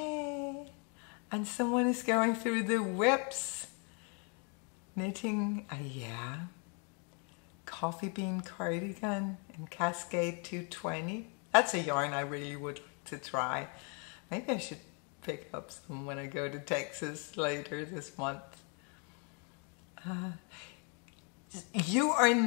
And someone is going through the whips. Knitting, coffee bean cardigan in Cascade 220. That's a yarn I really would like to try. Maybe I should pick up some when I go to Texas later this month. You are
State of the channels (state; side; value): quieter; right; 37.4 dB